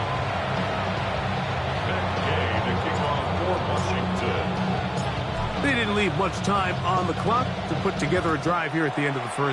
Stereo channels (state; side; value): identical; both; correlation 1.00